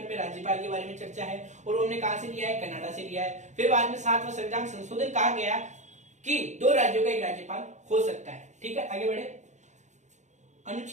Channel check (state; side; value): late; left; 0.34 ms